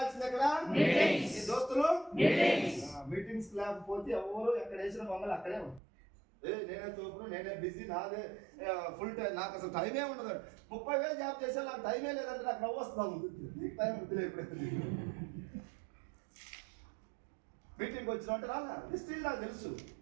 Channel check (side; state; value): left; drops out; at 5.8 s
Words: ఎక్కడ? మీ దోస్తులు మీటింగ్స్ లేకపోతే ఎవరు ఎక్కడ వేసిన మమ్మల్ని అక్కడే ఉంది. నేనే తోపును, నేనే బిజీ, నాదే ఫుల్ టైం, నాకు అసలు టైమే ఉండదు. 30,000 జాబ్ చేసా, నాకు టైమే లేదంటే నాకు నవ్వు వస్తాను. నీకు టైం వద్దులే. ఎప్పుడైతే మీటింగ్ వచ్చిన అంటే రాలా వెస్టీజ్ నాకు తెలుసు.